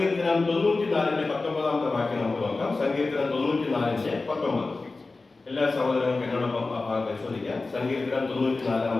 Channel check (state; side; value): quieter; right; 3.6 dB